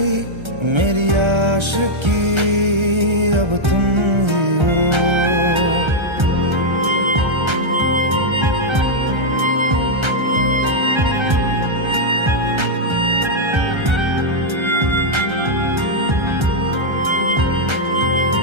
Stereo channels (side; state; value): left; late; 1.3 ms